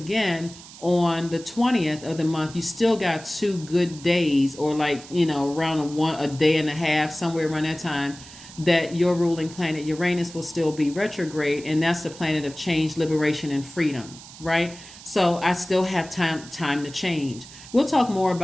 on the 20th of the month, you still got 2 good days, or around a day and a half, somewhere around that time, that your ruling planet Uranus will still be retrograde, and that's the planet of change, liberation, and freedom, right? So I still have time to change. We'll talk more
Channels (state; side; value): noise; right; hiss, 17 dB below the sound